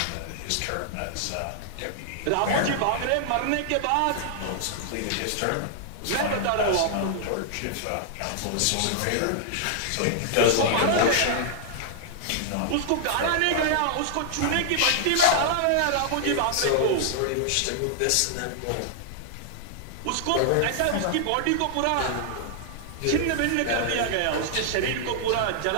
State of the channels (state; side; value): different; both; correlation -0.01